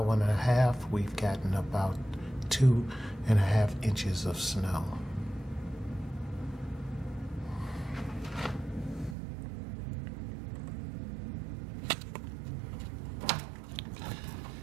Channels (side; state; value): left; drops out; at 9.2 s